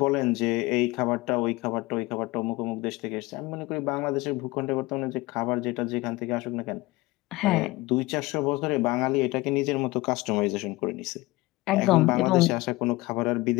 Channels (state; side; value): quieter; right; 21.1 dB